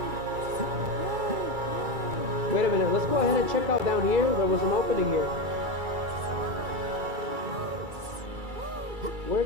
Wait a minute, let's go ahead and check out down here. There was an opening here. Where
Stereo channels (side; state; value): left; late; 2.3 ms